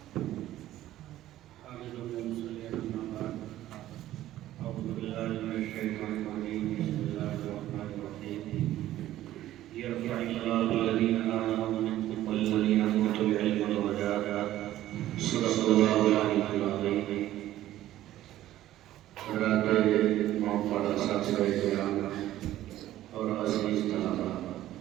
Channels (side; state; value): left; quieter; 14.0 dB